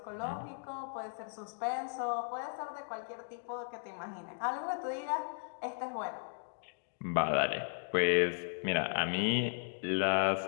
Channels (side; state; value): right; silent; digital silence